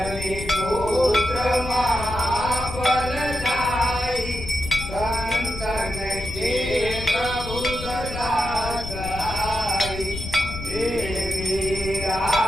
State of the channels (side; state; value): left; noise; rumble, 9 dB below the sound